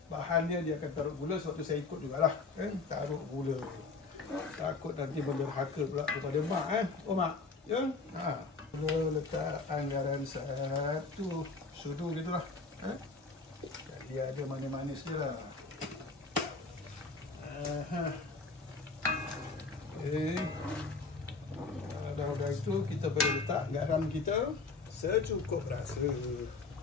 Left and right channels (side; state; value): right; quieter; 4.1 dB